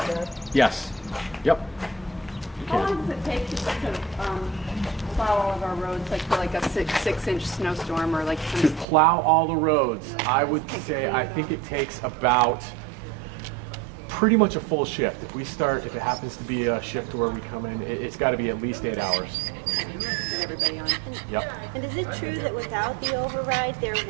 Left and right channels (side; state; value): left; drops out; at 8.8 s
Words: Yes. Yep. You How can. long does it take to plow all of our roads, like for like a six-inch snowstorm or like To plow all the roads, I would say I think it takes about pretty much a full shift. If we start, if it happens to be a shift where we come in, it's got to be at least 8 hours. get everybody on? Yep. And is it true that without the override, there